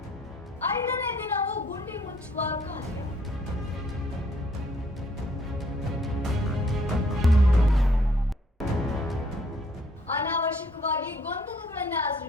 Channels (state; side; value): normal; both; correlation 0.64